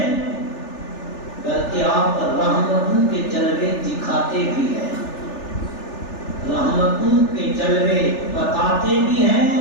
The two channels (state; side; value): late; right; 3.4 ms